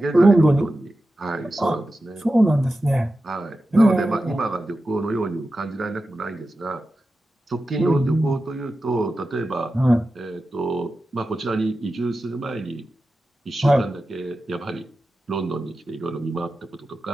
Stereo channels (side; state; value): both; normal; correlation 0.92